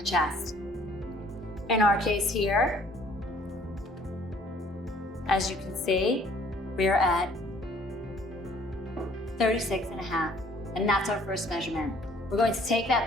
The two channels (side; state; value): both; normal; correlation 0.57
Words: chest. In our case here, as you can see, we are at 36.5, and that's our first measurement. We're going to take